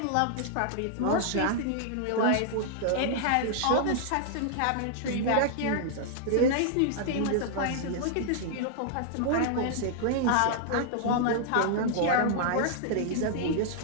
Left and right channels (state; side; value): different; both; correlation -0.01